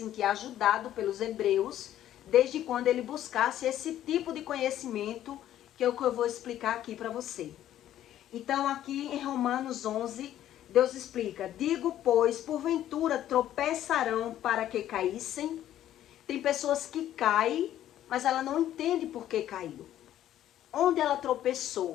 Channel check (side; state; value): right; quieter; 12.1 dB